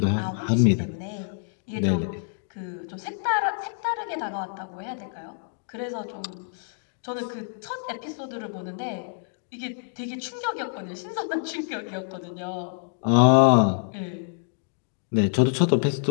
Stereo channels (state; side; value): silent; right; digital silence